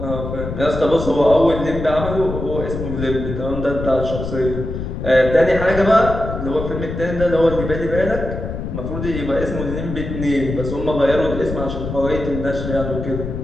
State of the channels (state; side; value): noise; left; rumble, 6 dB below the sound